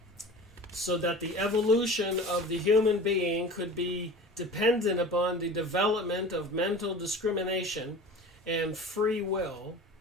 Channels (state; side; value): normal; both; correlation 0.37